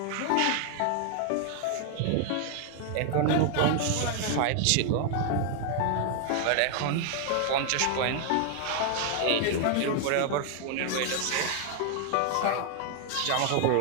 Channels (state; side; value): different; both; correlation 0.00